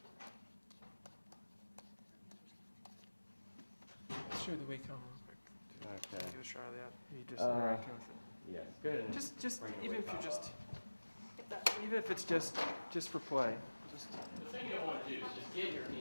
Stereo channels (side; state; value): both; inverted; correlation -1.00